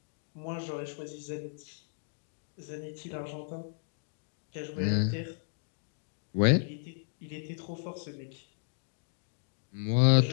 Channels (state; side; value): silent; right; digital silence